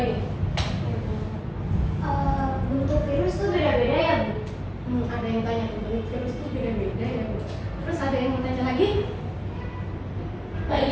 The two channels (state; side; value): identical; both; correlation 1.00